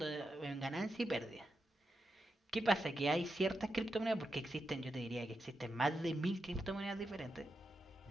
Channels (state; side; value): normal; both; correlation 0.87